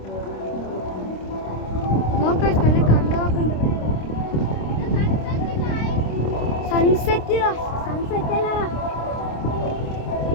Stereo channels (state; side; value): late; right; 26 ms